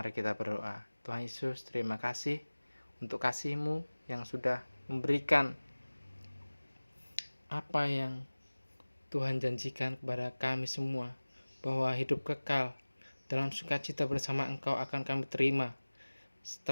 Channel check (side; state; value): both; inverted; correlation -1.00